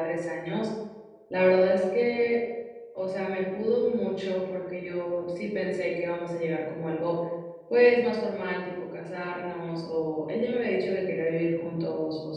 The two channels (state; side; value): identical; both; correlation 1.00